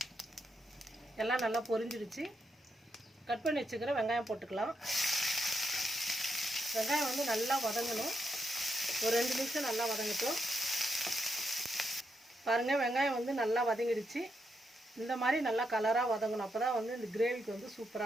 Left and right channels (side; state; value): both; normal; correlation 0.83